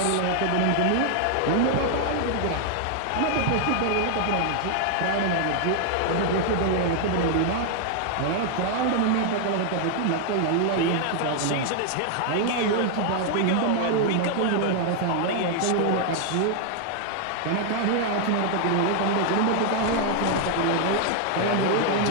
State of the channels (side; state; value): both; different; correlation 0.00